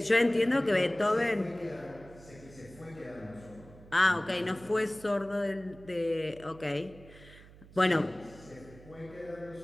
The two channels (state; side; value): noise; right; hum, 21 dB below the sound